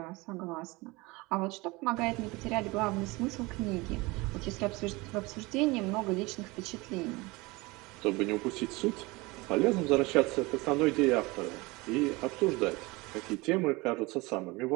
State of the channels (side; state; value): left; quieter; 23.6 dB